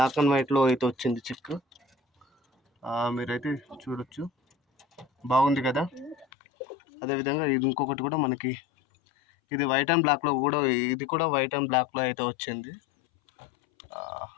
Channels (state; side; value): drops out; right; at 6.2 s